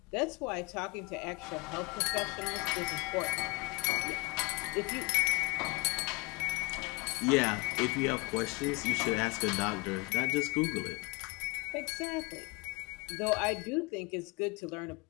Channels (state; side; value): quieter; right; 27.5 dB